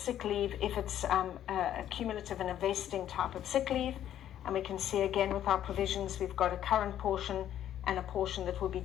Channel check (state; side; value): quieter; right; 11.1 dB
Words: leave if it's a cumulative and a vesting type of sick leave. And we can see again with our provisions, we've got a current portion and a portion that will be